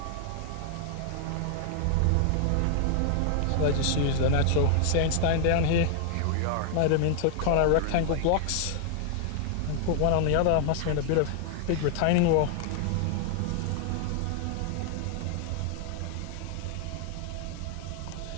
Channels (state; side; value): different; both; correlation 0.00